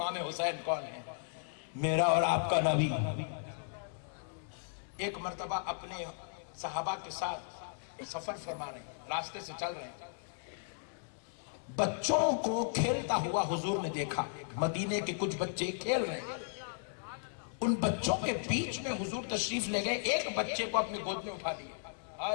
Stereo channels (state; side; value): silent; right; digital silence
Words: حسین کون ہے؟ میرا اور آپ کا نبی۔ ایک مرتبہ اپنے صحابہ کے ساتھ سفر فرما رہے ہیں، راستے سے چل رہے ہیں، بچوں کو کھیلتا ہوا حضور نے دیکھا، مدینے کے کچھ بچے کھیل رہے ہیں، ان بچوں کے بیچ میں حضور تشریف لے گئے، ایک بچے کو اپنی گود میں اٹھا لیا۔